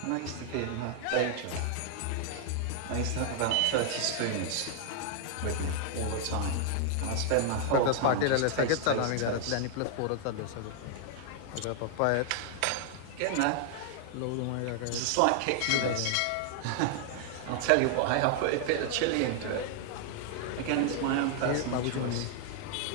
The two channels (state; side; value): different; both; correlation 0.00